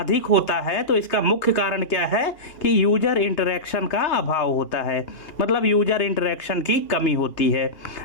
होता है तो इसका मुख्य कारण क्या है कि यूजर इंटरेक्शन का अभाव होता है, मतलब यूजर इंटरेक्शन की कमी होती है।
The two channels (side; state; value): right; late; 2.8 ms